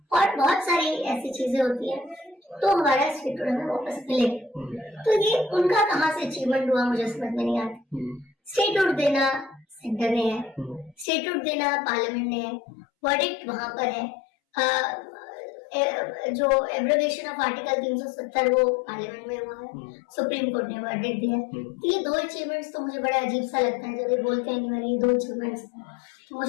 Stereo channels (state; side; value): drops out; right; at 11.1 s